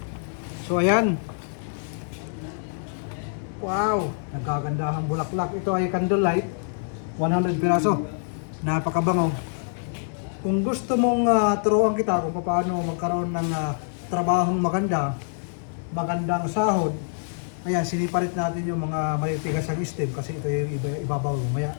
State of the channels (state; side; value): silent; right; 61 dB below the other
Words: So ayan. Wow, nagkagandahang bulaklak. Ito ay candlelight, 100 piraso. Napakabango. Kung gusto mong turuan kita kung paano magkaroon ng trabahong magandang sahod, ayan, sinipalit natin yung mga malitigas ang stem kasi ito yung ibabaw lumaya.